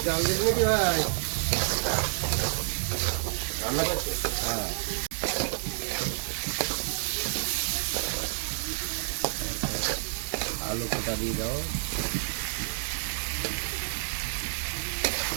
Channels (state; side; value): silent; left; digital silence